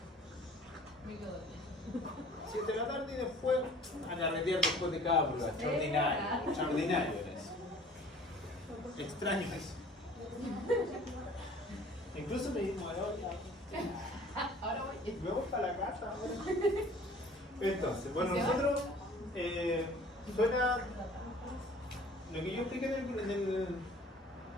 7 de la tarde y después a carretear después de cada prueba. Extraordinario, extraordinario era eso. Extraño eso. Incluso me dijo, ahora voy para la casa. Entonces, bueno, nosotros suena lo que yo expliqué en el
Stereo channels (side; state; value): both; normal; correlation 0.50